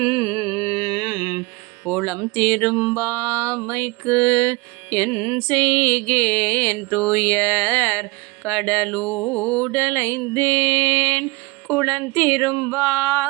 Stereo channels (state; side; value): quieter; left; 24.6 dB